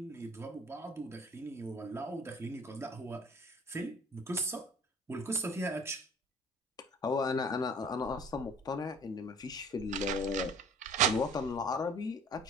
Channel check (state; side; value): normal; both; correlation 0.49